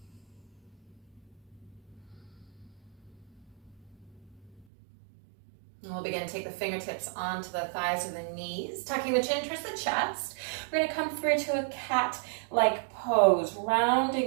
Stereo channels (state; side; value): drops out; left; at 4.7 s